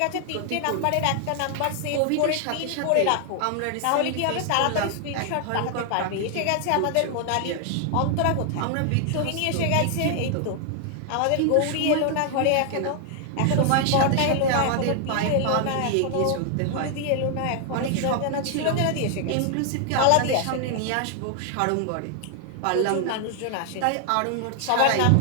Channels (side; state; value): both; different; correlation 0.00